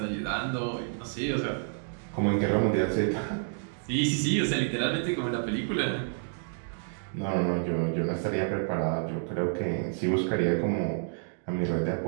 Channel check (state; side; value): silent; left; digital silence